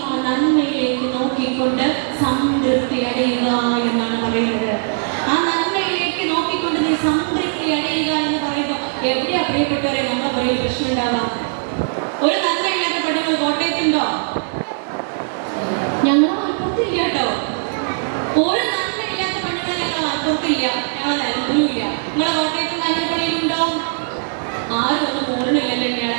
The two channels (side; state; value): left; silent; digital silence